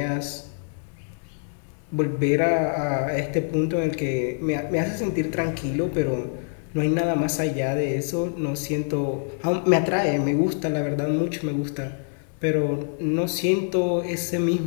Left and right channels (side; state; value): right; silent; digital silence